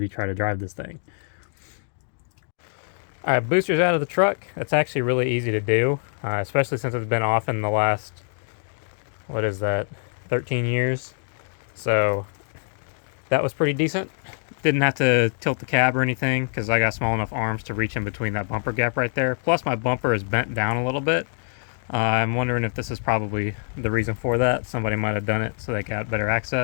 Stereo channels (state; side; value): silent; right; digital silence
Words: try to drive this thing. All right, booster's out of the truck. That's actually really easy to do, especially since it's been off in the last, what is that, 13 years. So that was pretty decent. Didn't have to tilt the cab or anything because I got small enough arms to reach in between that bumper gap right there. Plus my bumper is bent down a little bit. I'm wondering if this is probably the reason for that. Somebody might have done it so they got better